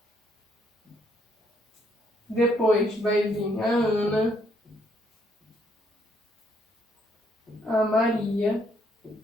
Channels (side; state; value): both; normal; correlation 0.71